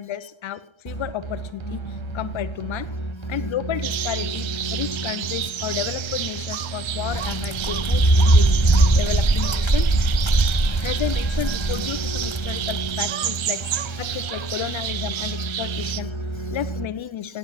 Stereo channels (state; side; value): late; right; 1.3 ms